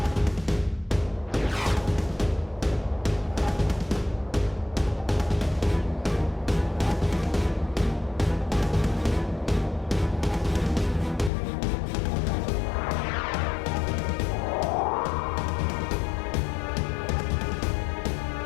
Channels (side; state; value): right; drops out; at 11.3 s